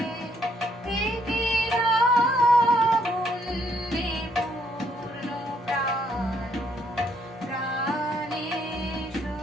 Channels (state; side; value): normal; both; correlation 0.70